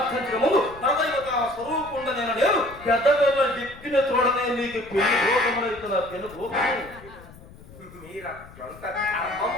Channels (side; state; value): left; noise; rumble, 20 dB below the sound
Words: ముందు పరదైవత స్వరూపుండ నేను పెద్దవేళ దిక్కిన చూడనే నీకు పెళ్లి భోగమనవుతున్నా. పెను భోగము